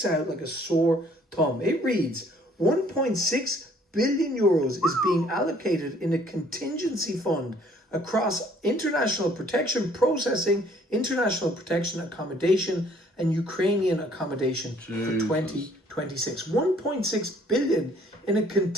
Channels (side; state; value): both; normal; correlation 0.60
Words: out like a sore thumb. It reads, 1.6 billion euros is being allocated in a contingency fund across international protection processing, international protection accommodation, and Ukrainian accommodation for 2026. 1.6 billion in a